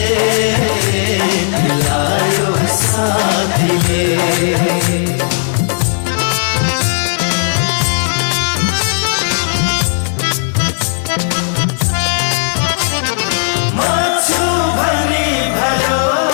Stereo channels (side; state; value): right; silent; digital silence